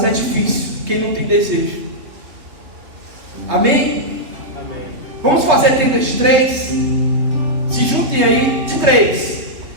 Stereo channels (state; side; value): late; left; 3.1 ms